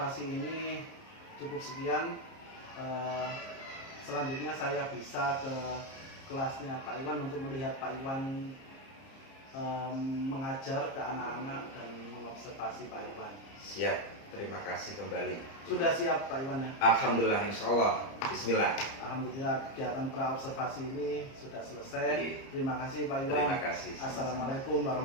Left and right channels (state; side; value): late; right; 30 ms